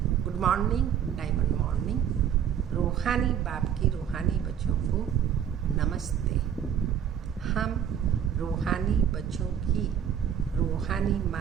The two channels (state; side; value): quieter; left; 8.9 dB